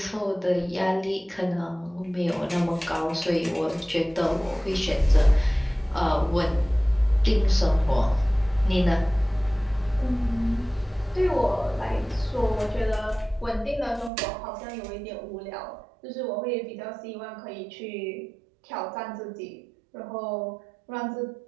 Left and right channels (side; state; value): left; drops out; at 14.1 s